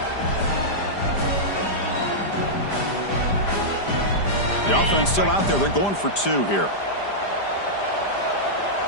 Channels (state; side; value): late; right; 5.0 ms